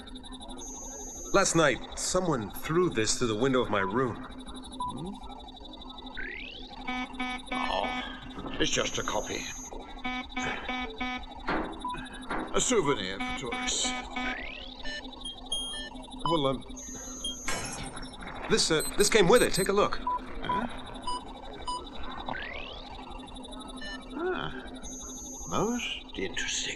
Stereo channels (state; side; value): identical; both; correlation 1.00